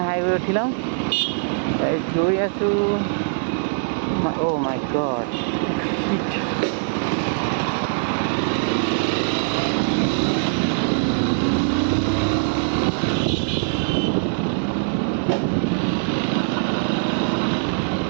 হাইৱে উঠি লওঁ গৈ আছোঁ অ' মাই গড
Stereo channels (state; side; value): silent; left; 64 dB below the other